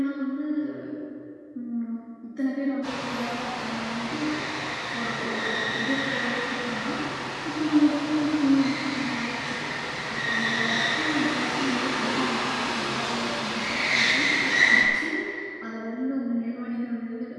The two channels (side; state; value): both; identical; correlation 1.00